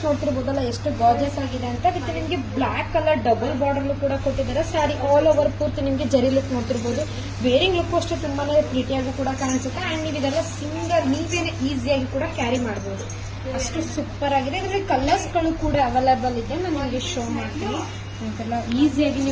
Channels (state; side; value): identical; both; correlation 1.00